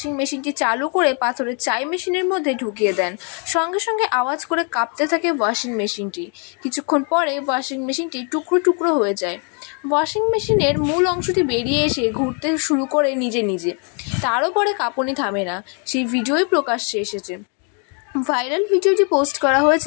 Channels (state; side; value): quieter; right; 39.1 dB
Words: মেশিনটি চালু করে পাথরের চাই মেশিনের মধ্যে ঢুকিয়ে দেন। সঙ্গে সঙ্গে আওয়াজ করে কাঁপতে থাকে ওয়াশিং মেশিনটি। কিছুক্ষণ পরে ওয়াশিং মেশিনটি টুকরো টুকরো হয়ে যায়। ওয়াশিং মেশিনের মূল অংশটি বেরিয়ে এসে ঘুরতে শুরু করে নিজে নিজে। তারও পরে কাঁপুনি থামে না। সেই ভিডিওই প্রকাশ্যে এসেছে। ভাইরাল ভিডিওটি পোস্ট করা